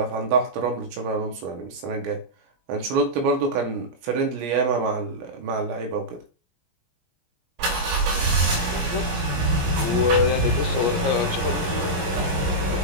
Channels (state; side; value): late; left; 17 ms